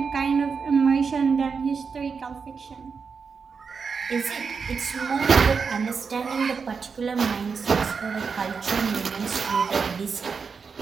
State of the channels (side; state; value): left; quieter; 5.5 dB